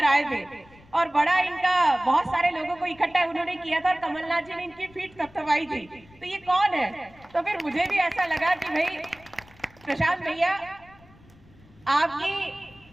आए थे और बड़ा इनका बहुत सारे लोगों को इकट्ठा उन्होंने किया था और कमलनाथ जी ने इनकी पीठ थपथपाई थी। तो ये कौन है? तो फिर मुझे भी ऐसा लगा कि भाई प्रशांत भैया आपकी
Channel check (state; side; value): noise; left; rumble, 26 dB below the sound